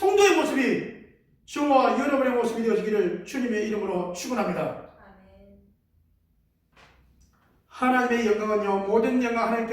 모습이 저와 여러분의 모습이 되어지기를 주님의 이름으로 축원합니다. 하나님의 영광은요 모든 영광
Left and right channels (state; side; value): identical; both; correlation 1.00